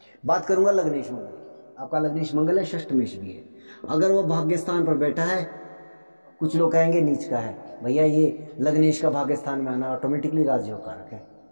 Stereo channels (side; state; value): both; inverted; correlation -1.00